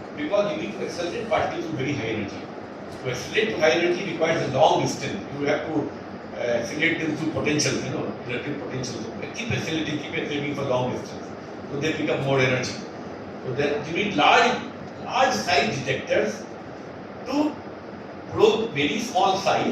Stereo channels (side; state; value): both; identical; correlation 1.00